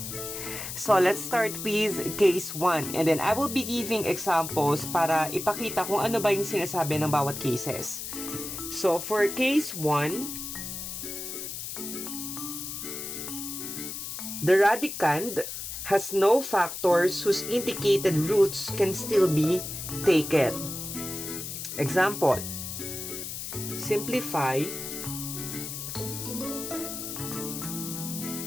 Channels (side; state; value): left; noise; hiss, 7 dB below the sound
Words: So, let's start with case 1 and then I will be giving examples para ipakita kung ano ba yung sinasabi ng bawat cases. So, for case 1, the radicand has no factors whose indicated roots can still be taken. Example, simplify